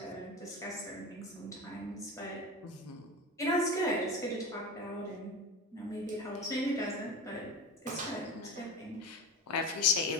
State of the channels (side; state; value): both; normal; correlation 0.27